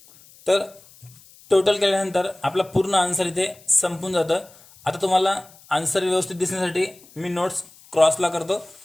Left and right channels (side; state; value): left; noise; hiss, 25 dB below the sound